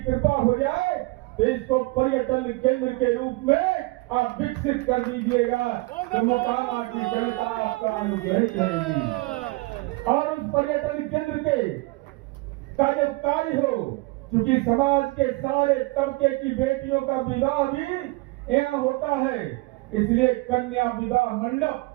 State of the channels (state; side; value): quieter; left; 23.8 dB